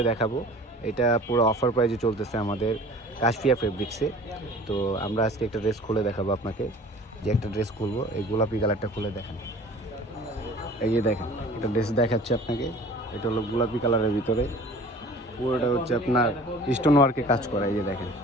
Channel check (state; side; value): normal; both; correlation 0.45